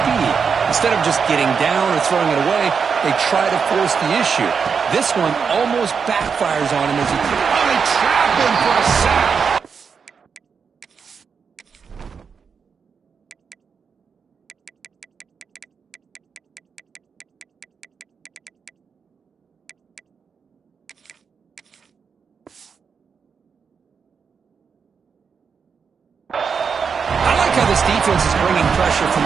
Instead of just getting down or throwing it away, they try to force the issue. This one almost backfires on him as he... Oh, they trap him for a sack. This defense is bringing pressure from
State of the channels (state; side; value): quieter; left; 6.1 dB